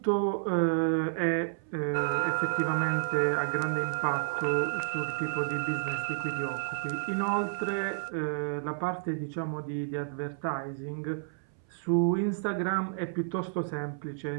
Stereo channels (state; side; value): silent; left; 57 dB below the other